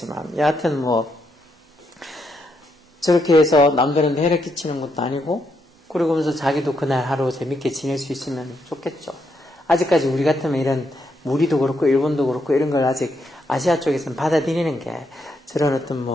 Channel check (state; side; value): normal; both; correlation 0.78